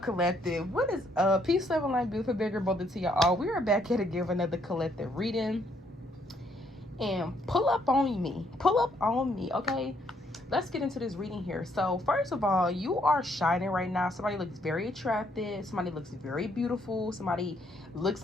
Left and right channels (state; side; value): normal; both; correlation 0.70